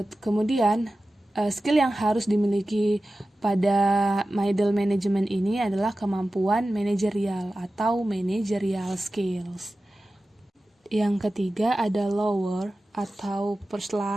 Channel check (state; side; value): normal; both; correlation 0.95